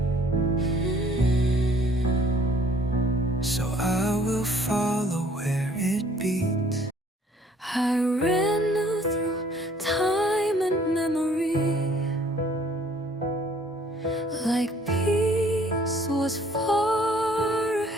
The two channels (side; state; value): both; normal; correlation 0.58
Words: So I will follow where it beats. I ran through time and memory like peace was far